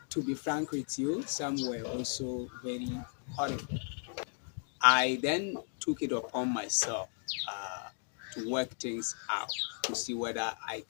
to be frank with you, some were also very horrible. I then took it upon myself to work things out to see whether I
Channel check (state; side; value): silent; right; 54 dB below the other